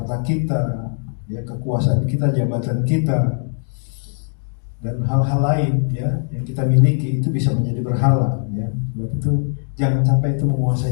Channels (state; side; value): silent; right; digital silence